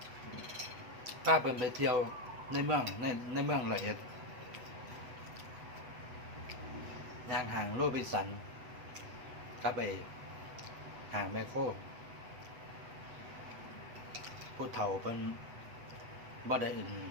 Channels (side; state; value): left; late; 8.1 ms